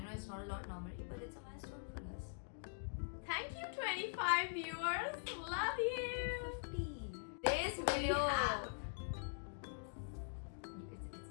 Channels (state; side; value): silent; right; digital silence